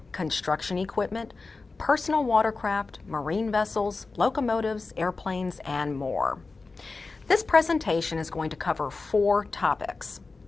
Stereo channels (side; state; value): right; quieter; 3.9 dB